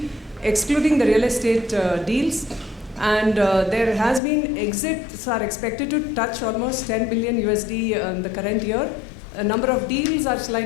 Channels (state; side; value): drops out; right; at 4.2 s